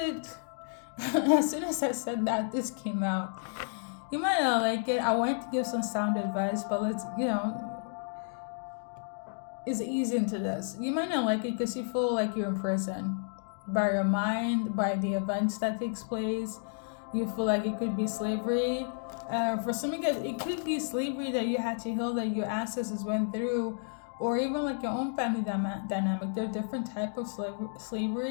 As soon as I said that, this came out. You might not like it. I wanted to give some sound advice, but let's, it's easy into this. You might not like it because you feel like you're in prison. By your mind, by the events that takes place. You feel like it could be slavery. For some of you guys, it could be slavery that you had to heal, that your ancestors went through, or even like your own family dynamic. There are different types of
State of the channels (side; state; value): right; silent; digital silence